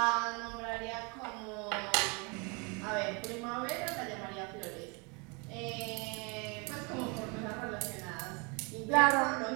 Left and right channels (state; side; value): quieter; left; 31.2 dB